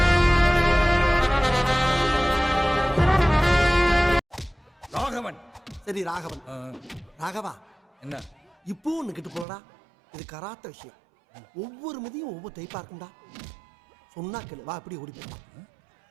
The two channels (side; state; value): left; drops out; at 9.5 s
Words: சரி ராகவன். ராகவா, என்ன இப்போ ஒன்று கிட்டு போலடா. இது கராத்த விஷயம். ஒவ்வொரு முதியும் ஒவ்வொரு டைப்பா இருக்கும்டா. சொன்னா கேளு, வா அப்படி ஓடி போயிடலாம்.